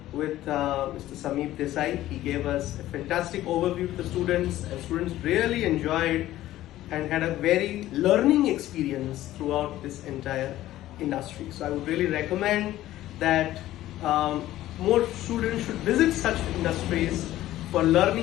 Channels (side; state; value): right; quieter; 14.6 dB